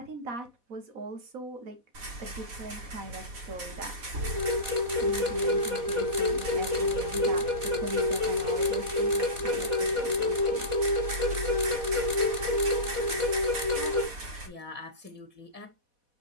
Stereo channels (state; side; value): late; left; 4.1 ms